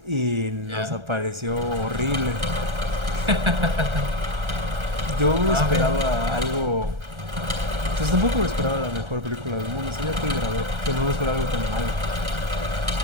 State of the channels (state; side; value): late; left; 1.3 ms